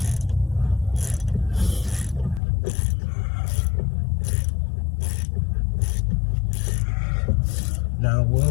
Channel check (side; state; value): right; drops out; at 2.4 s